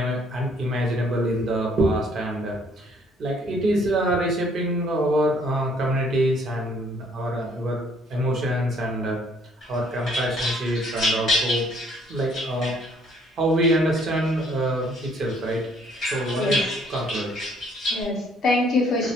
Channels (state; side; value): normal; both; correlation 0.63